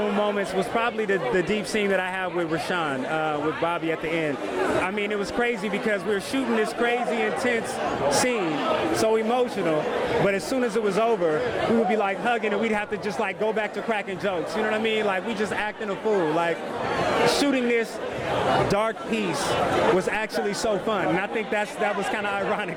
moments was probably the deep scene that I have with Rahsun, with Bobby at the end. I mean, it was crazy because we were shooting this crazy, intense scene, so emotional, but as soon as it was over, we would be hugging and we'd have to just go back to cracking jokes. You know what I mean? We just acting a fool. Shooting this dark piece was actually so fun, and I think that was kind of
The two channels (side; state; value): both; identical; correlation 1.00